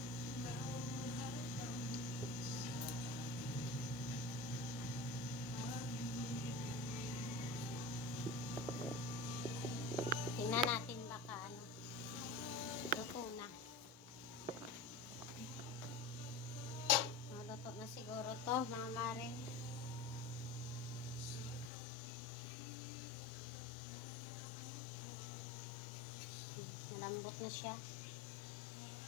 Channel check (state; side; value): drops out; right; at 21.7 s